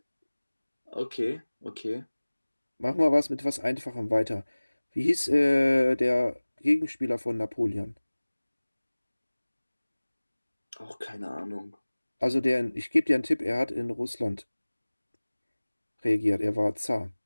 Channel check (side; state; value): both; inverted; correlation -1.00